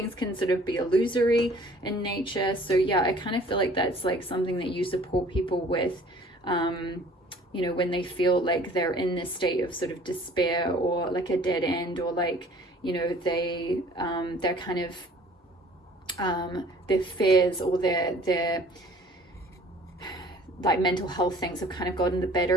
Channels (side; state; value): both; normal; correlation 0.52